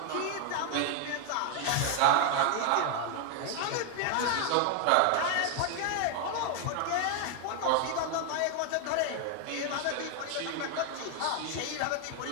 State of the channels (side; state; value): both; different; correlation 0.00